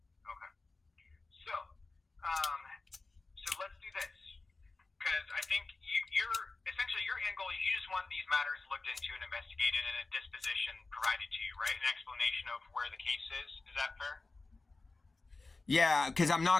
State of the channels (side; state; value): right; quieter; 3.5 dB